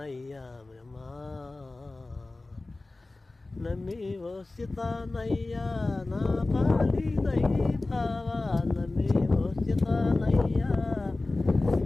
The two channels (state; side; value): quieter; right; 3.1 dB